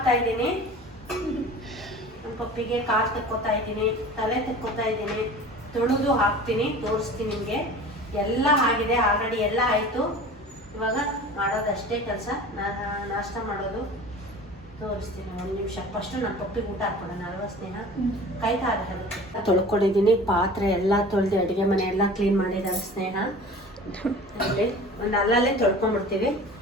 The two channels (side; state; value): both; normal; correlation 0.40